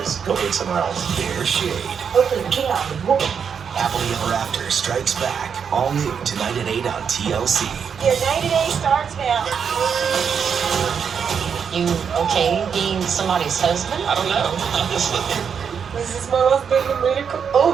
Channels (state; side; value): quieter; left; 6.9 dB